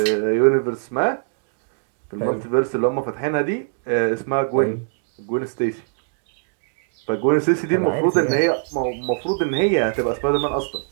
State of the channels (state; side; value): silent; left; digital silence